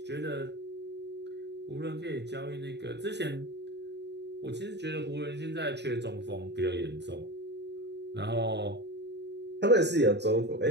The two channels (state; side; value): late; left; 0.50 ms